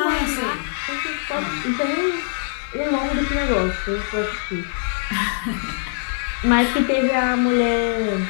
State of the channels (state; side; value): silent; right; 56 dB below the other